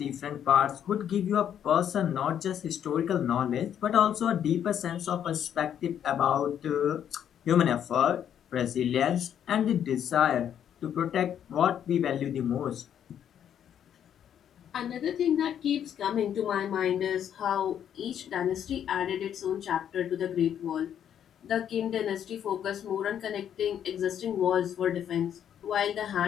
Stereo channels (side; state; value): right; quieter; 9.4 dB